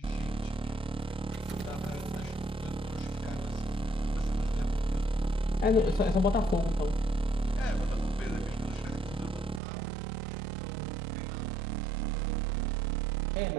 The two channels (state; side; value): drops out; left; at 9.6 s